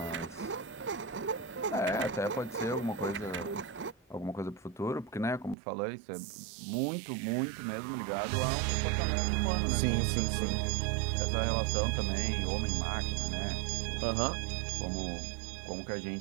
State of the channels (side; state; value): left; drops out; at 5.6 s